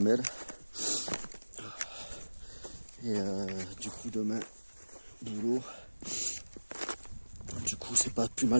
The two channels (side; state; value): both; inverted; correlation -1.00